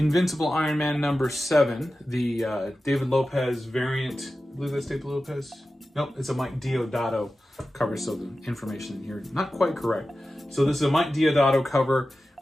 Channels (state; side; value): normal; both; correlation 0.94